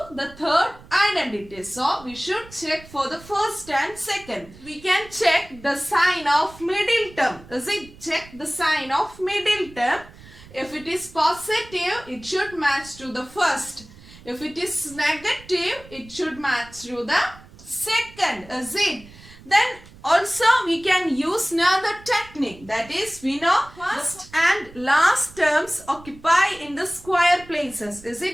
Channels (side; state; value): right; noise; rumble, 21 dB below the sound